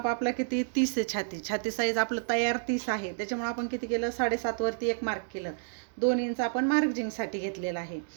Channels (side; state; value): left; silent; digital silence